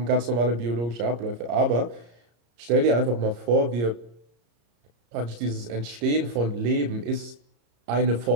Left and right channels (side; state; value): left; late; 34 ms